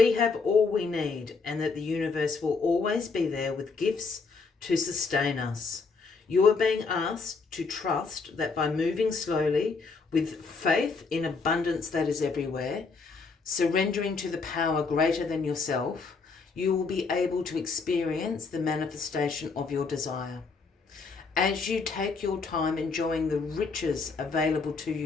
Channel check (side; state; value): right; quieter; 4.5 dB